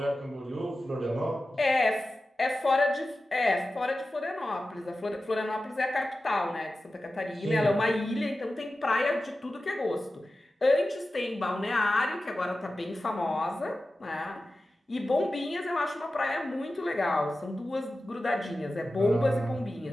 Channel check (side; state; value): both; normal; correlation 0.94